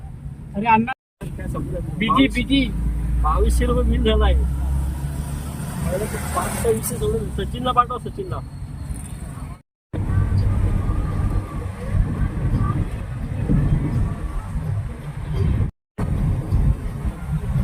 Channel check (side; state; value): both; identical; correlation 1.00